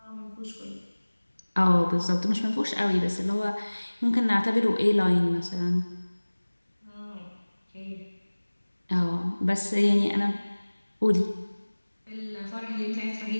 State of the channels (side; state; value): both; inverted; correlation -1.00